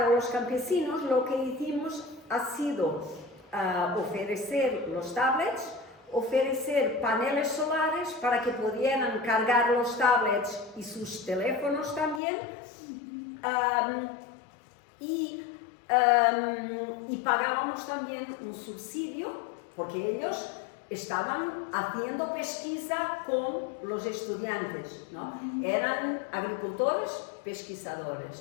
los campesinos lo que hicimos ha sido ofrecer los tablets, ofrecer paneles solares para que pudieran cargar los tablets y sus teléfonos también, y pagábamos también un subsidio porque ellos estaban haciendo pesquisa con los estudiantes, ¿no? Eran agricultores,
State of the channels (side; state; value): right; drops out; at 12.2 s